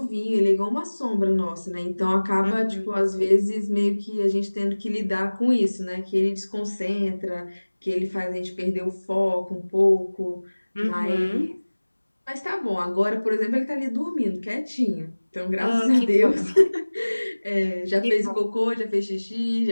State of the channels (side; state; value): both; inverted; correlation -1.00